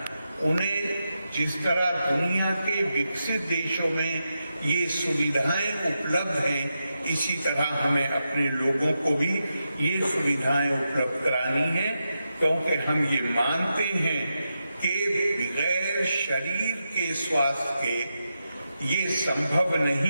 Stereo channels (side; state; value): both; inverted; correlation -0.87